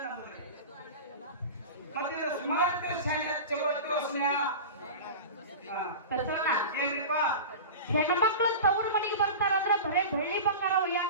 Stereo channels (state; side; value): inverted; both; correlation -0.31